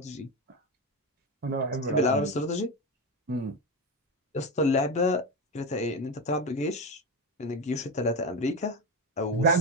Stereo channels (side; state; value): both; normal; correlation 0.17